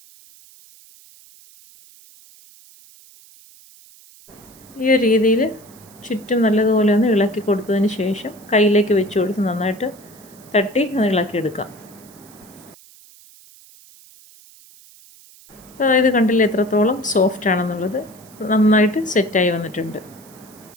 ഈ ഒരു രീതിയിൽ ചുറ്റും നല്ലതുപോലെ ഒന്ന് ഇളക്കി കൊടുത്തതിന് ശേഷം കയ്യിലേക്ക് വെച്ച് കൊടുത്ത് നന്നായിട്ട് തട്ടി ഒന്ന് ഇളക്കിയെടുക്കാം. അപ്പോൾ അതായത് കണ്ടില്ല എത്രത്തോളം സോഫ്റ്റ് ആണെന്നുള്ളത്. നന്നായിട്ട് സെറ്റായി വന്നിട്ടുണ്ട്.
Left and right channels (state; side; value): noise; right; hiss, 24 dB below the sound